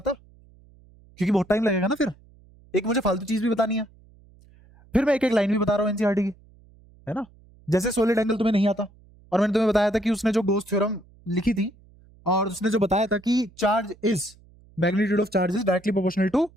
क्योंकि बहुत टाइम लगेगा ना फिर, एक मुझे फालतू चीज भी बतानी है, फिर मैं एक एक लाइन भी बता रहा हूँ एनसीईआरटी की, है ना? जैसे सॉलिड एंगल तुम्हें नहीं आता, और मैंने तुम्हें बताया था कि उसने जो गोस थ्योरम लिखी थी, और उसने जो बताया था कि charge is magnitude of charge is directly proportional to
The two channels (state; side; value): noise; right; hum, 27 dB below the sound